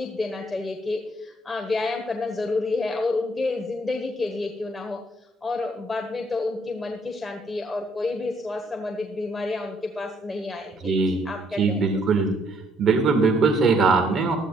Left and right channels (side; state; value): both; normal; correlation 0.67